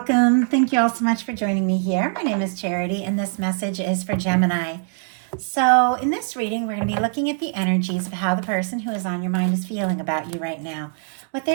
Thank you all so much for joining me here. My name is Charity, and this message is for Gemini. So, in this reading, we're going to be looking at the energies of how the person who is on your mind is feeling about you right now. What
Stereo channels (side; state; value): left; silent; 55 dB below the other